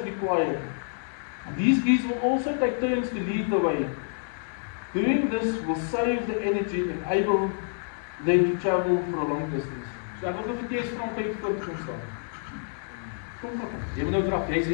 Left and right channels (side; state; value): right; silent; digital silence